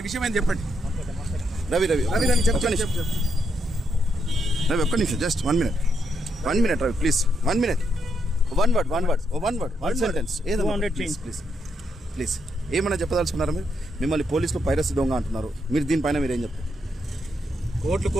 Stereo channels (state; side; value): normal; both; correlation 0.79